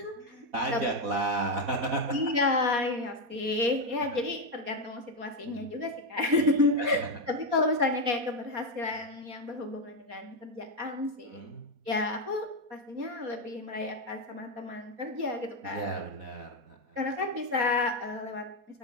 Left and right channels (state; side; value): late; left; 4.2 ms